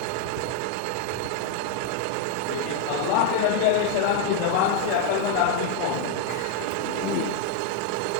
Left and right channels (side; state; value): both; different; correlation 0.00